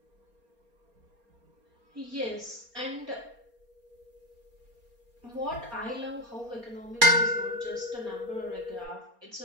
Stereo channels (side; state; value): left; late; 4.3 ms